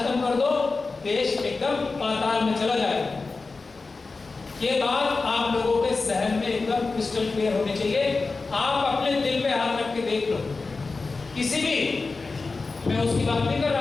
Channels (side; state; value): right; quieter; 3.9 dB